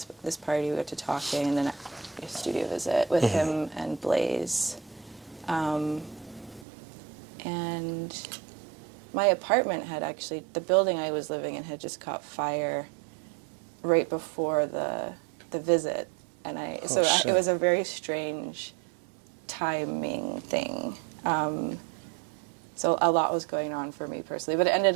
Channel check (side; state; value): left; drops out; at 6.7 s